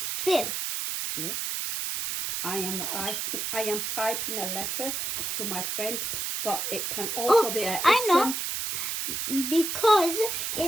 fi'l. Yeah. I am typing a letter to my friend, but it can also be an ism. I know. Because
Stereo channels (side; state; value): right; noise; hiss, 2 dB below the sound